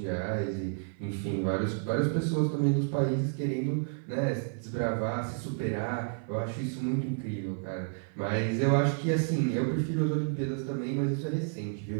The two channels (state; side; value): silent; left; 57 dB below the other